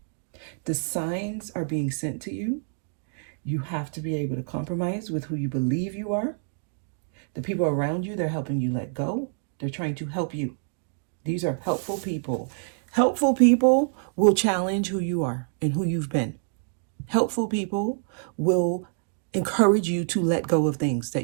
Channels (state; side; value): silent; left; digital silence